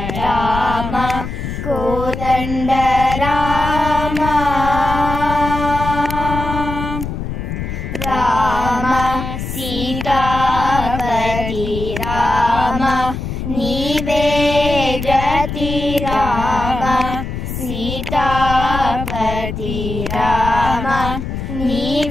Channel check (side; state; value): left; noise; rumble, 6 dB below the sound